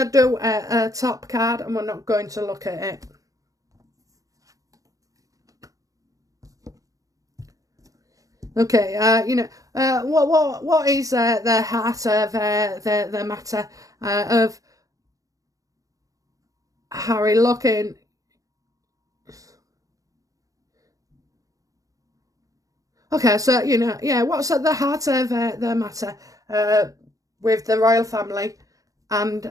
do a top card, and we're not going to look at it. Okay, what is the heart of the matter of Harry looking? Okay, so what's at the heart of the matter with the royal family and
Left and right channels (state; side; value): late; left; 0.17 ms